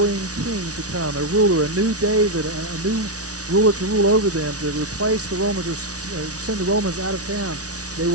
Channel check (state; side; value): late; left; 0.67 ms